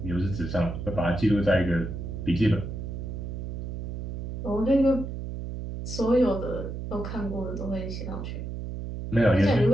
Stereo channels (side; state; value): right; noise; hum, 6 dB below the sound